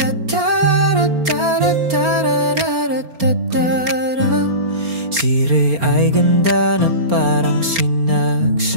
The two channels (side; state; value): left; late; 4.3 ms